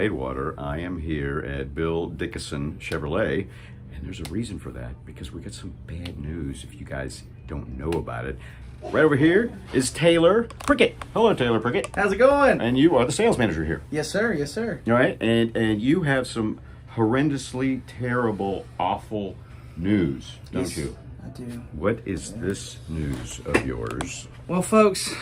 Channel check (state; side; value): identical; both; correlation 1.00